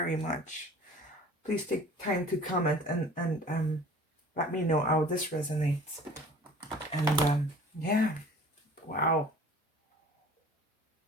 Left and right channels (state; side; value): normal; both; correlation 0.47